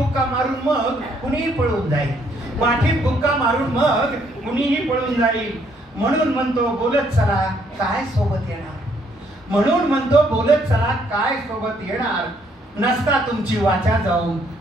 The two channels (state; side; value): normal; both; correlation 0.69